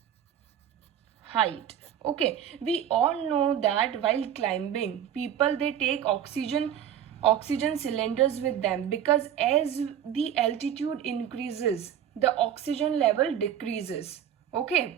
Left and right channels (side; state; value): left; quieter; 9.8 dB